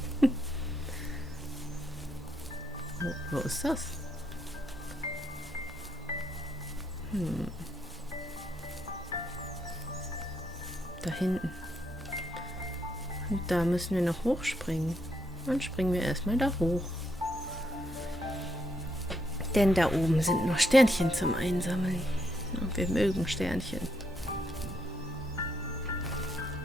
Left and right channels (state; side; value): normal; both; correlation 0.77